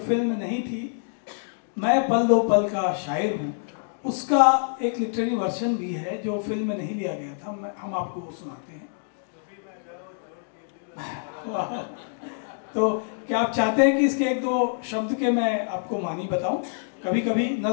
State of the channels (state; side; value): silent; right; digital silence